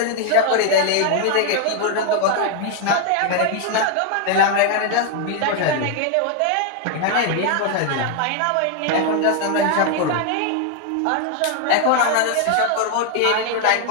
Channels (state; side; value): different; both; correlation 0.00